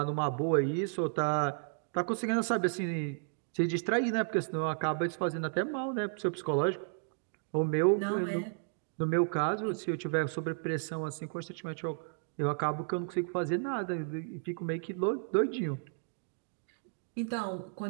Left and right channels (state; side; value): silent; left; digital silence